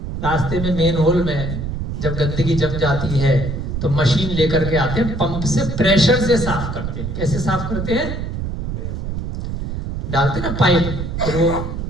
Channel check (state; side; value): noise; right; rumble, 4 dB below the sound